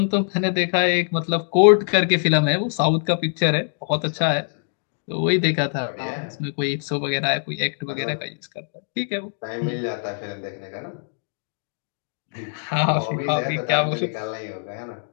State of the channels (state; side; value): silent; right; digital silence